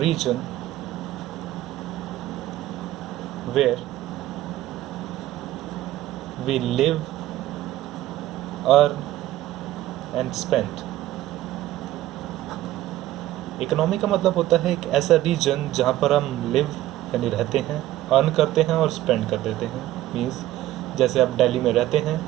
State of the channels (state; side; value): quieter; left; 14.8 dB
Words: where we live, earn and spend. Economy का मतलब होता है एक ऐसा रीजन जहाँ पर हम लिव यानी रहते हैं, अर्न करते हैं और स्पेंड कर देते हैं। मीन्स जैसे आप दिल्ली में रहते हैं,